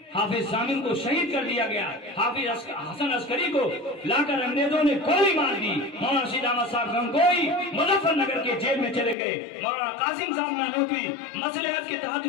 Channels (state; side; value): drops out; right; at 9.2 s